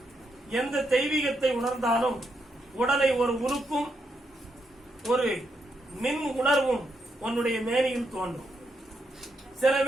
எந்த தெய்வீகத்தை உணர்ந்தாலும் உடலை ஒரு உருக்கும் ஒரு மின் உணர்வும் உன்னுடைய மேனியில் தோன்றும். சில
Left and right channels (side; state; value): both; normal; correlation 0.81